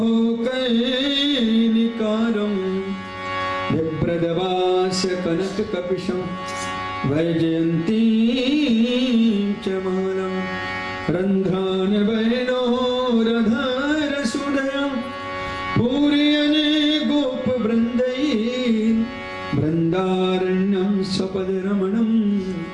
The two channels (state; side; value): identical; both; correlation 1.00